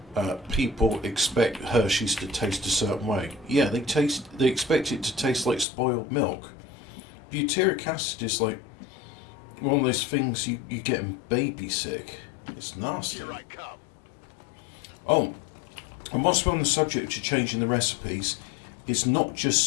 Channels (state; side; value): drops out; right; at 5.7 s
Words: people expect Hershey's to taste a certain way. Yeah, they expect it to taste like spoiled milk. Butyric acid is like one of those things you get in baby sick. It's nasty. Here I come. Oh, and whilst we're on the subject of changing the recipes, it's not